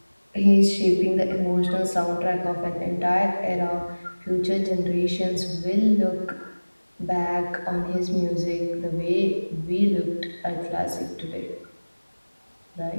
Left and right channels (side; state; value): both; inverted; correlation -1.00